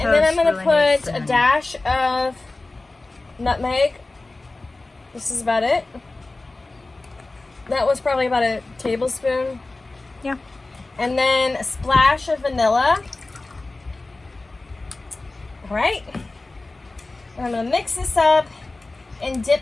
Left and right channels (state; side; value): quieter; right; 3.2 dB